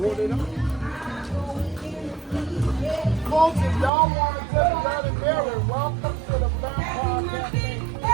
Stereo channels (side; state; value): left; drops out; at 3.9 s